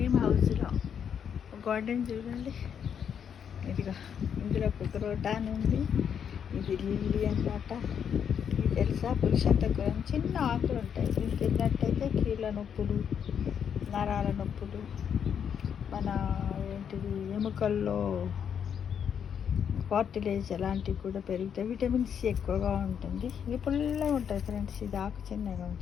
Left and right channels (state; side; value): quieter; right; 8.0 dB